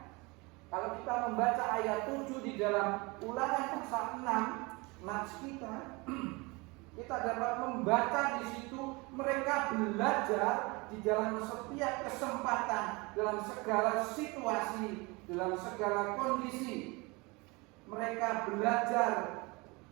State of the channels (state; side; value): quieter; left; 26.0 dB